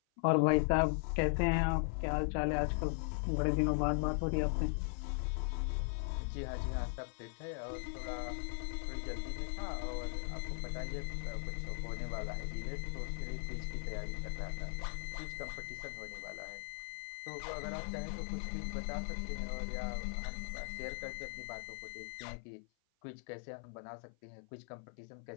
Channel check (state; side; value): silent; right; 52 dB below the other